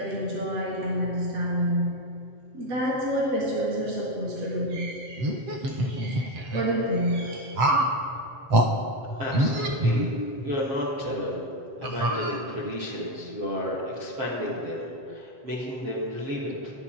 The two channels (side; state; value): left; late; 7.6 ms